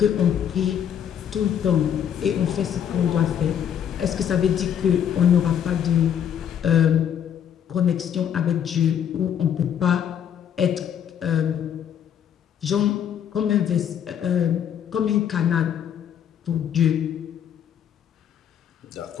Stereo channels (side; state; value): right; quieter; 9.0 dB